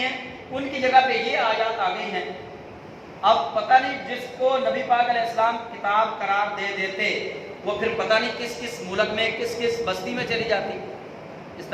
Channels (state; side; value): identical; both; correlation 1.00